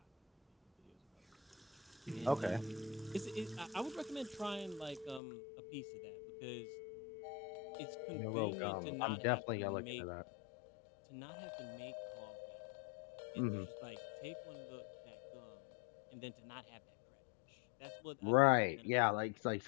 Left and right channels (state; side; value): drops out; right; at 5.2 s